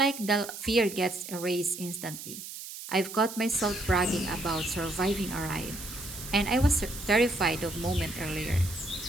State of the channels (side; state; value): right; noise; hiss, 11 dB below the sound